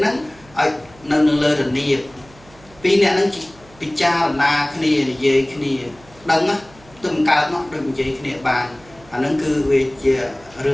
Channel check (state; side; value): noise; right; hum, 25 dB below the sound